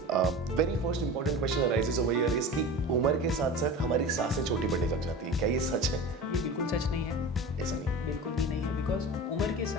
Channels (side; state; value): both; normal; correlation 0.32